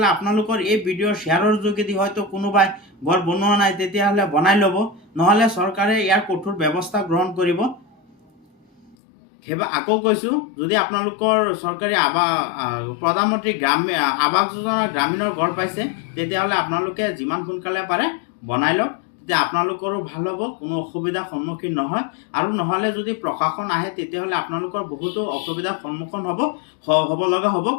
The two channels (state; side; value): drops out; right; at 9.0 s